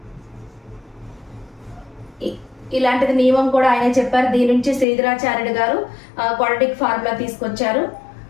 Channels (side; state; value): right; drops out; at 4.9 s